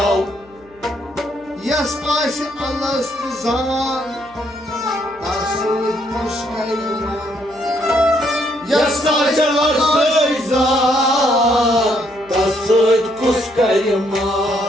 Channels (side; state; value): left; noise; hum, 28 dB below the sound